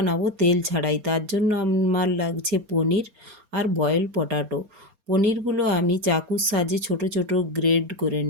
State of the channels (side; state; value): left; late; 4.3 ms